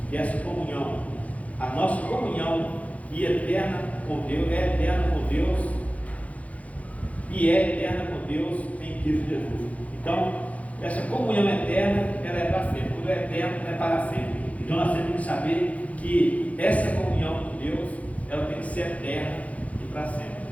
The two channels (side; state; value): right; late; 0.067 ms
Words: que é essa comunhão, a nossa comunhão e eterna com Deus, é eterna com Deus e é eterna com Deus em Cristo Jesus. Então, essa comunhão eterna, ela é para sempre. Quando é eterno, é para sempre. Então nós temos que saber que essa comunhão com Deus, ela tem que ser eterna e para sempre.